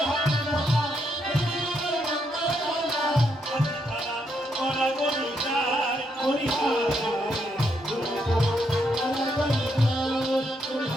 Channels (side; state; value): both; normal; correlation 0.78